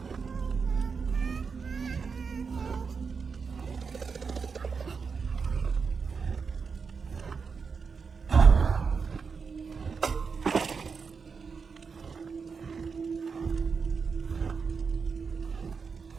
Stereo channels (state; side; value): quieter; left; 5.4 dB